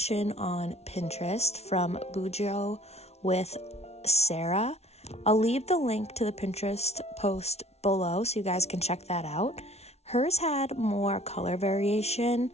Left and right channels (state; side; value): late; right; 0.31 ms